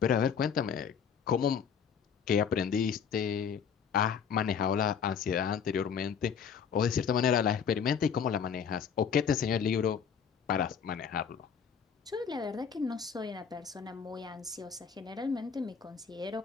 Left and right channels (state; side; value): quieter; right; 7.0 dB